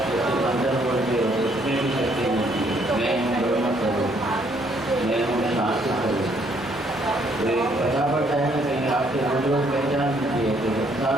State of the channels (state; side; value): normal; both; correlation 0.67